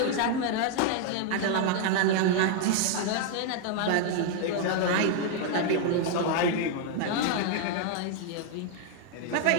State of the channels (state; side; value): different; both; correlation 0.00